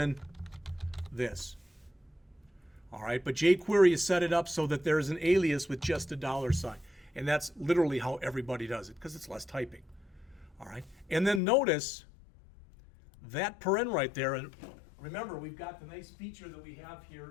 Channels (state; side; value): drops out; right; at 11.4 s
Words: this. All right, but jQuery has set it up so that there's an alias with just a $sign. And that's literally how everybody does it, because it's less typing. All right, and then notice that paren right there, and remember we've got the nice feature that we have